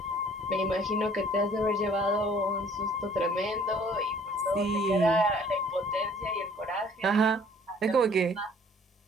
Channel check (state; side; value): normal; both; correlation 0.56